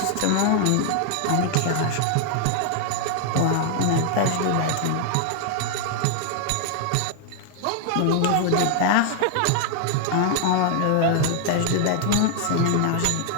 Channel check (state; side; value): different; both; correlation 0.00